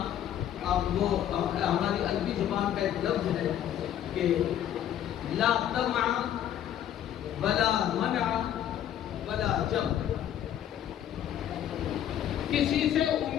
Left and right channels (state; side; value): quieter; right; 10.7 dB